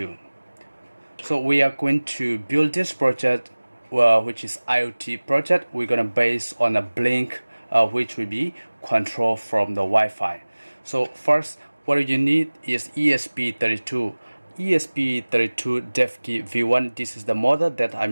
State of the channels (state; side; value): inverted; both; correlation -1.00